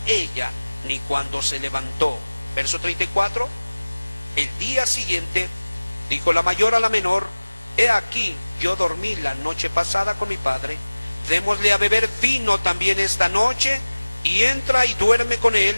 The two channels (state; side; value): inverted; both; correlation -1.00